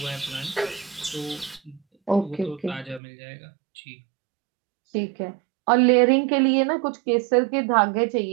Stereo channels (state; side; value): drops out; left; at 3.0 s